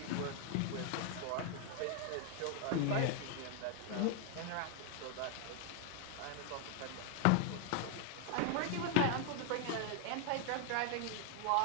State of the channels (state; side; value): different; both; correlation 0.00